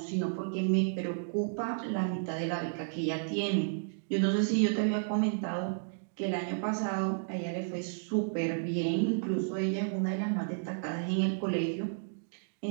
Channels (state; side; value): silent; left; digital silence